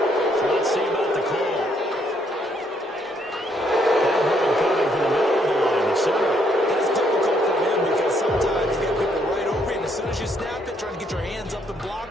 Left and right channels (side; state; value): both; normal; correlation 0.71